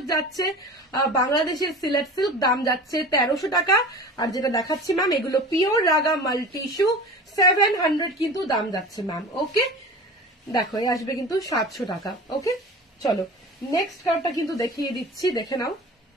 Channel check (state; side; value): normal; both; correlation 0.36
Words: যাচ্ছে, বাংলাদেশের সিলেট সিল্ক, দাম যাচ্ছে 1300 টাকা। আর যেটা দেখাচ্ছি ম্যাম, এগুলো পিওর রাগা মাল্টি ইস্যু, 700 কিন্তু দাম যাচ্ছে ম্যাম। ওকে, দেখো এই আসবে কিন্তু 700 টাকা। ওকে, চলো নেক্সট কালারটা কিন্তু দেখিয়ে দিচ্ছি, দেখে নাও।